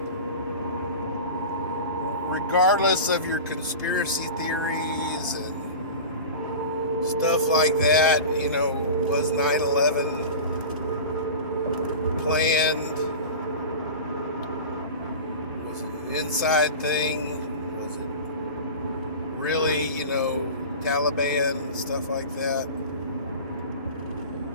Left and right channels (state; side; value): inverted; both; correlation -0.32